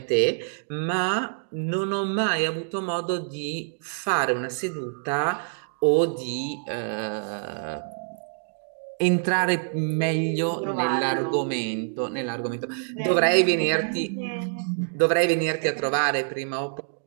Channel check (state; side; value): silent; left; digital silence